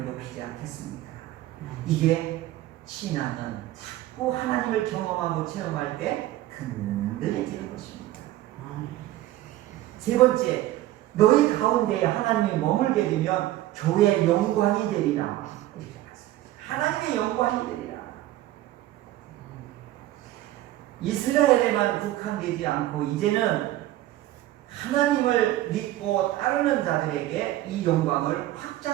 높이지 않겠습니까? 이게 신앙은 자꾸 하나님을 경험하고 체험할 때 근들해지는 것입니다. 세 번째, 너희 가운데 하나님이 머물게 되면 교회의 영광이 되리라. 이렇게 말씀하십니다. 하나님의 영광이 되리라. 이스라엘에만 국한되지 않고 이제는 하나님을 믿고 따르는 자들에게 이 영광을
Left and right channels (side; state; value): left; quieter; 15.1 dB